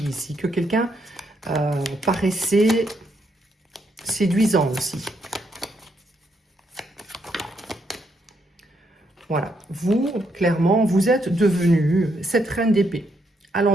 ici que quelqu'un paraissait séduisant aussi. Voilà, vous, clairement, vous êtes devenu cette reine d'épée à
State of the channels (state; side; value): normal; both; correlation 0.76